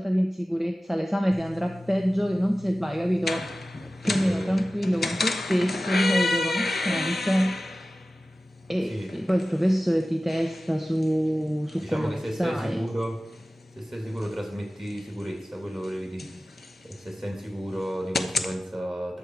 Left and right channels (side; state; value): both; normal; correlation 0.96